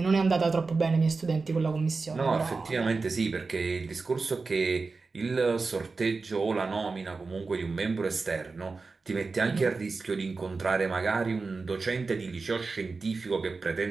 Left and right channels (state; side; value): quieter; left; 4.1 dB